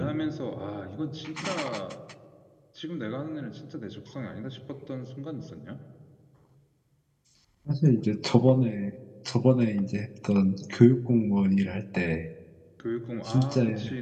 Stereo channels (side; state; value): both; identical; correlation 1.00